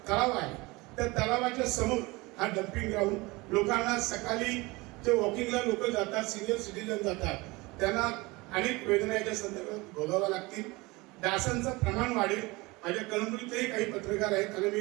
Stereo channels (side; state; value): left; quieter; 23.3 dB